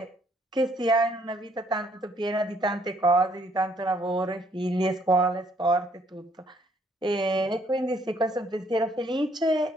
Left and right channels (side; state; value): both; normal; correlation 0.67